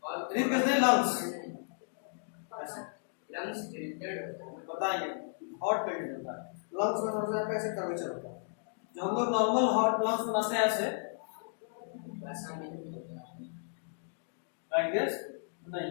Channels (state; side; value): silent; right; digital silence